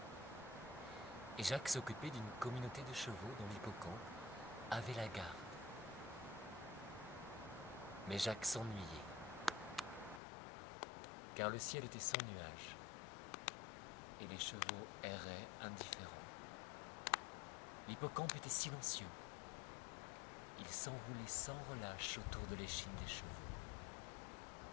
Et Jacques s'occupait d'une communauté de chevaux dont l'hippocampe avait la garde. Mais Jacques s'ennuyait, car le ciel était sans nuages et les chevaux erraient indifférents. L'hippocampe était silencieux. Il s'enroulait sans relâche autour de l'échine des chevaux.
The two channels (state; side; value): drops out; right; at 10.2 s